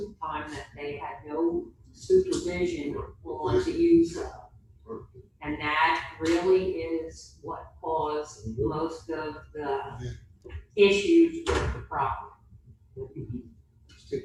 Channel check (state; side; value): identical; both; correlation 1.00